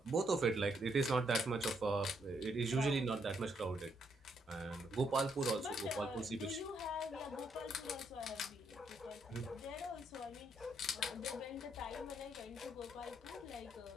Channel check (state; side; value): normal; both; correlation 0.74